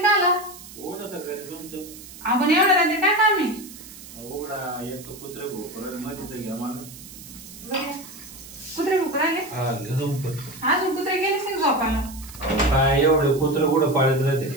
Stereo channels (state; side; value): noise; right; hiss, 16 dB below the sound